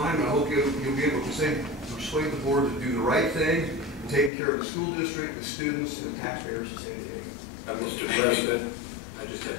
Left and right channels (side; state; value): right; drops out; at 4.3 s